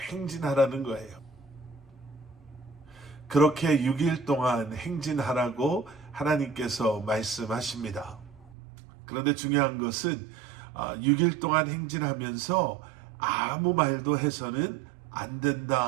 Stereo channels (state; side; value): drops out; left; at 8.6 s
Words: 거예요. 그렇게 6일 동안 행진하라고 하나님께서 말씀하십니다. 그런데 중요한 것은 6일 동안 행진하면서 아무 말도 해서는 안